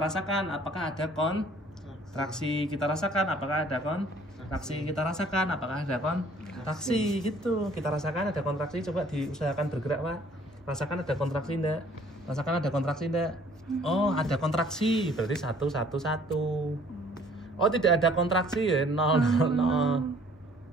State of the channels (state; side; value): normal; both; correlation 0.57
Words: rasakan apakah ada kontraksi. Kita rasakan apakah ada kontraksi. Kita rasakan apakah ada kontraksi. Gitu. Kita rasakan ada kontraksi. Coba diusahakan bergerak, Pak. Rasakan ada kontraksi enggak? Rasakan ada kontraksi enggak? Oh, ada kontraksi. Berarti 1 1 1. Oh, tidak ada kontraksi ya 0 0 0.